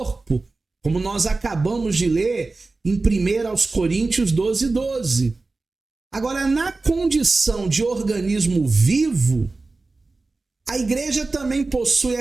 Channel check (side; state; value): left; quieter; 3.5 dB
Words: como nós acabamos de ler em 1 Coríntios 12:12. Agora, na condição de organismo vivo, a igreja também possui